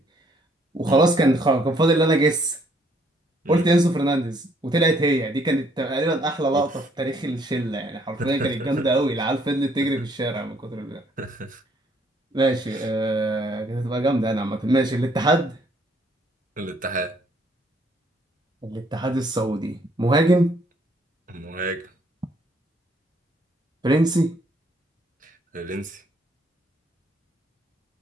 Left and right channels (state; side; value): normal; both; correlation 0.66